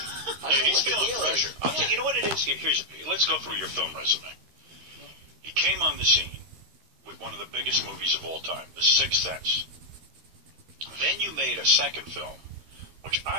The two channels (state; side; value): late; left; 13 ms